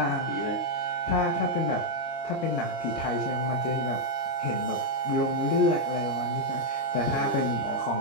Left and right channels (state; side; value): late; right; 22 ms